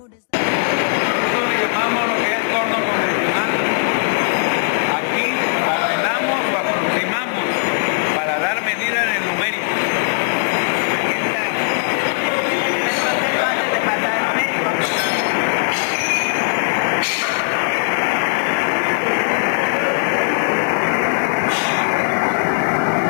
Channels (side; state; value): right; silent; digital silence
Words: Nosotros le llamamos lo que es torno convencional. Aquí ordenamos o aproximamos para dar medida en el numérico.